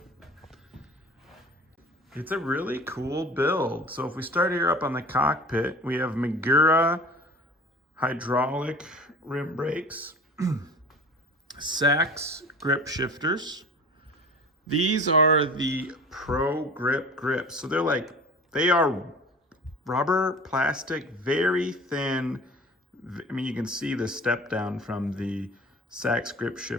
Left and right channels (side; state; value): both; normal; correlation 0.40